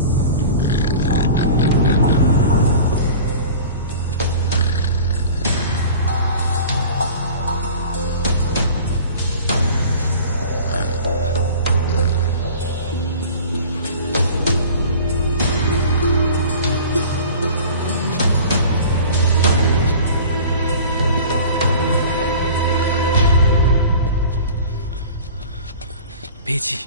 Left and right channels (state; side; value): inverted; both; correlation -0.41